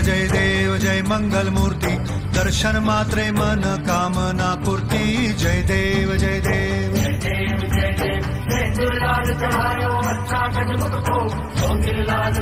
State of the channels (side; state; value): both; identical; correlation 1.00